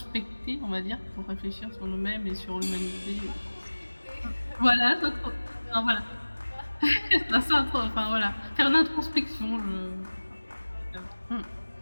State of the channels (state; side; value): inverted; both; correlation -1.00